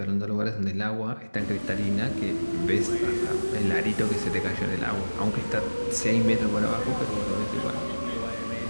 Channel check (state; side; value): inverted; both; correlation -1.00